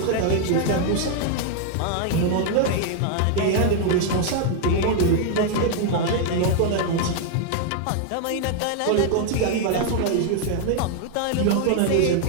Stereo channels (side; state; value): both; different; correlation 0.00